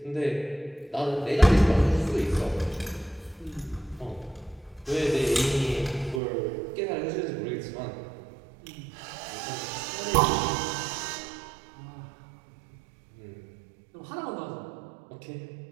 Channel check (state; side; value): drops out; left; at 6.2 s